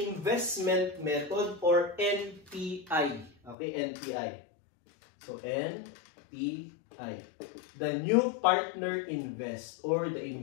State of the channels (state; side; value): drops out; right; at 3.6 s